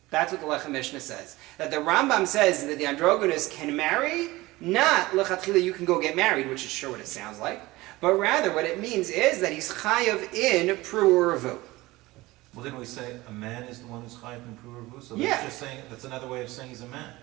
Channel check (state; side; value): quieter; left; 19.8 dB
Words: That's what the Lechem Mishnah says. That the Rambam says that the androgynous can marry, not lechatchila you can go get married, which is sure what it sounds like, but rather what it means is that he's chayav in pru'urvu. Well, didn't we say a man is the one who's chayav in pru'urvu? So Yeah. that's just saying, that's another way of saying he's a man.